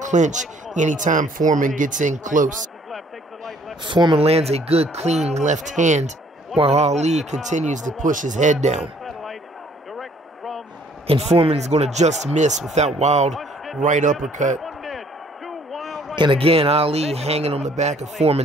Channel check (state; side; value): normal; both; correlation 0.61